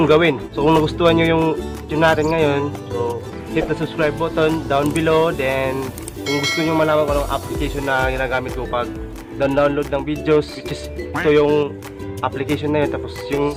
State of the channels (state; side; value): identical; both; correlation 1.00